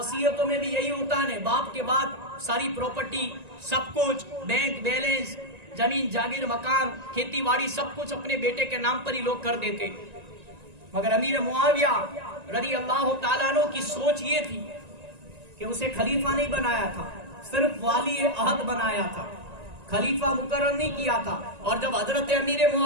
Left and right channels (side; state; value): left; late; 1.9 ms